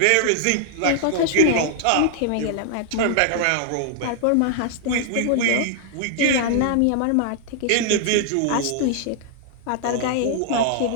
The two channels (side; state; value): both; different; correlation -0.01